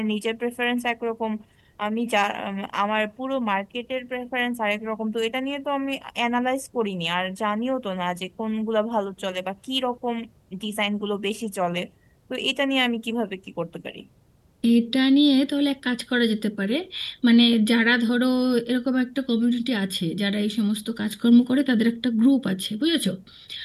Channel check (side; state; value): both; identical; correlation 1.00